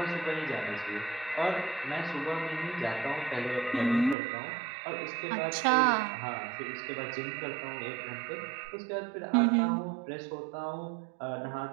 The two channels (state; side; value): drops out; left; at 4.2 s